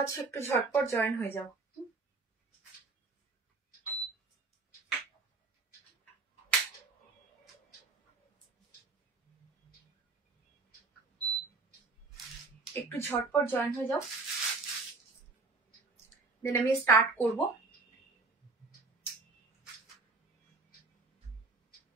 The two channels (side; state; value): left; quieter; 3.9 dB